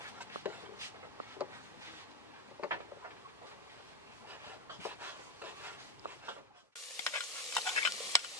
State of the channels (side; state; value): both; normal; correlation 0.07